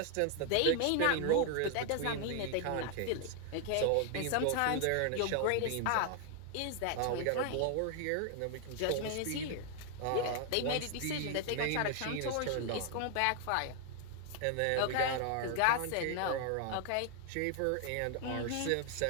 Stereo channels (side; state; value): both; different; correlation 0.00